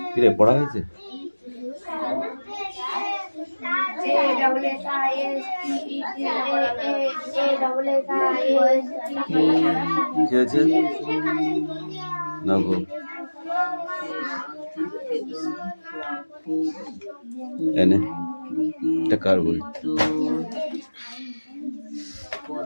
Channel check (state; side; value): inverted; both; correlation -1.00